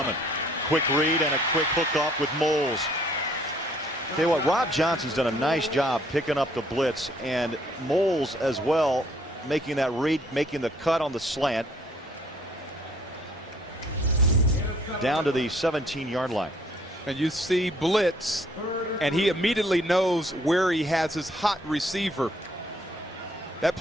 Quick read and a quick hook off with Moles. Tell you what, Rob Johnson's done a nice job picking up the blitz, and Moles as well, making that read, making the cut on the slant down to the 17-yard line. And you see blitz, and he immediately knows where he has his hot receiver. That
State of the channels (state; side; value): normal; both; correlation 0.63